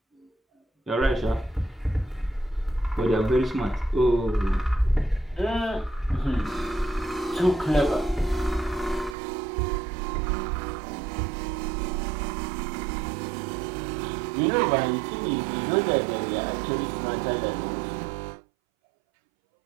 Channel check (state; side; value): drops out; left; at 9.2 s